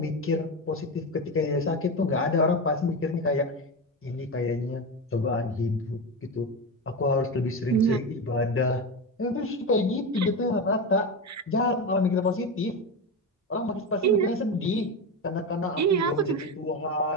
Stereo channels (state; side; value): normal; both; correlation 0.17